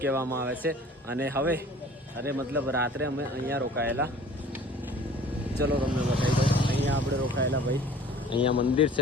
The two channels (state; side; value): normal; both; correlation 0.47